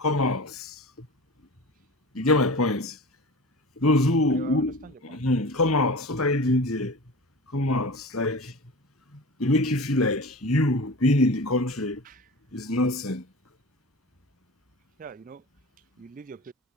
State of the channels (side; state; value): both; normal; correlation 0.33